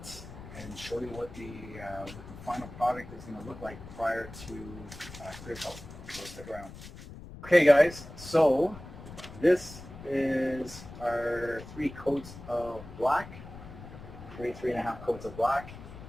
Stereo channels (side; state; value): left; noise; rumble, 14 dB below the sound